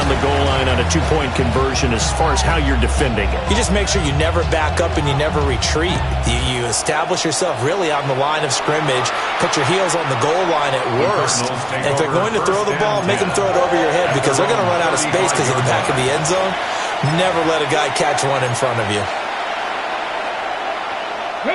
the goal line on a 2-point conversion as far as how you're defending it? You just make sure you never back up and you never retreat. You establish yourself really on the line of scrimmage, put your heels on the goal line at worst. And if they're going to throw the ball, make them throw it over your head because they're going to run out of space because of the back of the end zone. Never let a guy catch one in front of you.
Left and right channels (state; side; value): identical; both; correlation 1.00